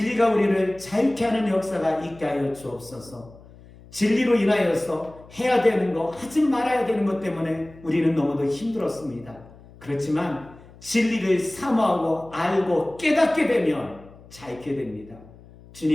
우리를 자유케 하는 역사가 있게 하여 주옵소서. 진리로 인하여서 해야 되는 거, 하지 말아야 되는 것 때문에 우리는 너무도 힘들었습니다. 그렇지만 진리를 사모하고 알고 깨닫게 되면 자유케 됩니다.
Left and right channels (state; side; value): noise; left; hum, 22 dB below the sound